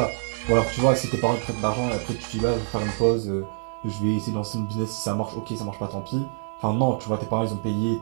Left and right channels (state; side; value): silent; left; digital silence